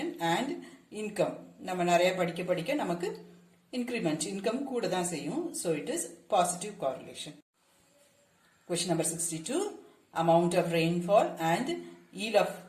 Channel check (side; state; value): both; identical; correlation 1.00